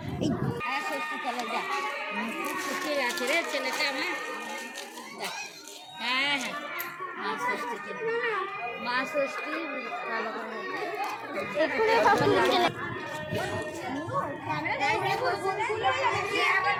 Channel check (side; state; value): both; identical; correlation 1.00